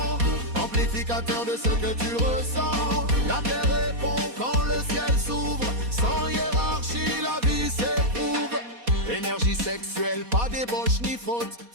amplificateur de ce que tu ressens. La terre répond quand le ciel s'ouvre. Sans hiérarchie, la vie s'éprouve. Énergie sexuelle, pas débauche ni faute.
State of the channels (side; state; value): left; late; 4.2 ms